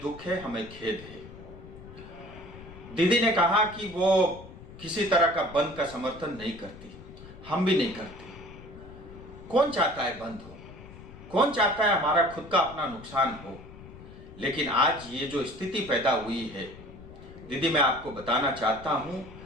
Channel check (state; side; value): noise; left; rumble, 17 dB below the sound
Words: दुख है, हमें खेद है। दीदी ने कहा कि वो किसी तरह का बंद का समर्थन नहीं करती, हम भी नहीं करते। कौन चाहता है बंद हो? कौन चाहता है हमारा खुद का अपना नुकसान हो? लेकिन आज ये जो स्थिति पैदा हुई है दीदी, मैं आपको बताना चाहता हूं,